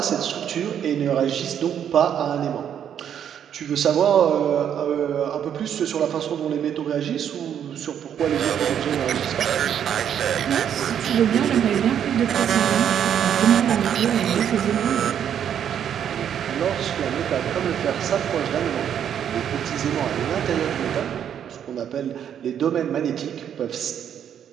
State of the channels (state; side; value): quieter; left; 9.1 dB